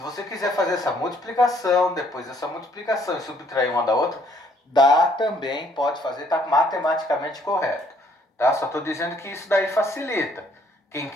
quiser fazer essa multiplicação, depois dessa multiplicação e subtrair uma da outra, dá também, pode fazer, está matematicamente correto. Tá? Só estou dizendo que isso daí facilita. Quem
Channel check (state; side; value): normal; both; correlation 0.65